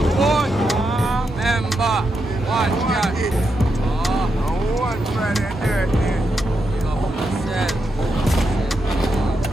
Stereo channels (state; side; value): normal; both; correlation 0.84